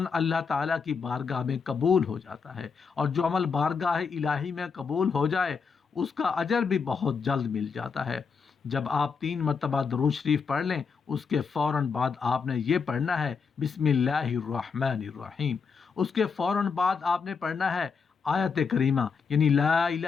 اللہ تعالیٰ کی بارگاہ میں قبول ہو جاتا ہے، اور جو عمل بارگاہ الہی میں قبول ہو جائے اس کا اجر بھی بہت جلد مل جاتا ہے۔ جب آپ 3 مرتبہ درود شریف پڑھ لیں، اس کے فوراً بعد آپ نے یہ پڑھنا ہے بسم اللہ الرحمن الرحیم۔ اس کے فوراً بعد آپ نے پڑھنا ہے آیت کریمہ، یعنی لا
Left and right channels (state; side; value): quieter; right; 5.6 dB